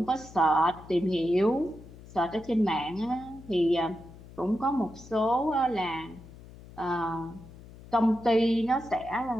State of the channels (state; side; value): noise; left; hum, 18 dB below the sound